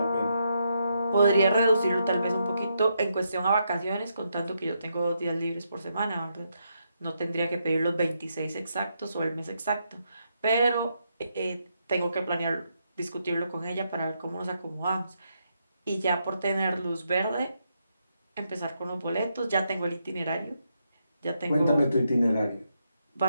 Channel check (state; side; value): inverted; both; correlation -0.80